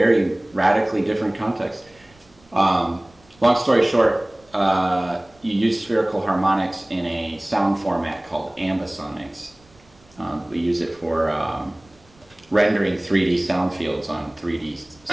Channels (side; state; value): right; noise; rumble, 30 dB below the sound